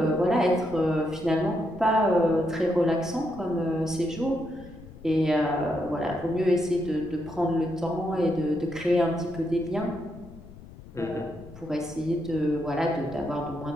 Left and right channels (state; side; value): noise; left; rumble, 18 dB below the sound